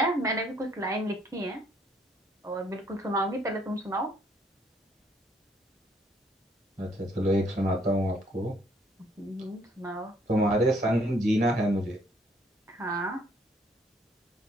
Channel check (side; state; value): both; normal; correlation 0.65